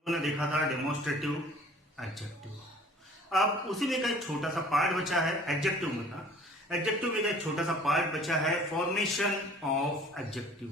हमने देखा था डेमोन्स्ट्रेटिव एडजेक्टिव। अब उसी में का एक छोटा सा पार्ट बचा है एडजेक्टिव में का। एडजेक्टिव में का एक छोटा सा पार्ट बचा है फॉर्मेशन ऑफ एडजेक्टिव।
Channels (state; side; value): normal; both; correlation 0.50